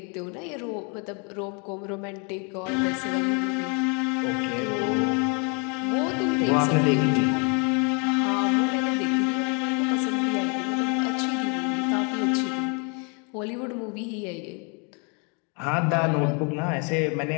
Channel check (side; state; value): right; quieter; 35.1 dB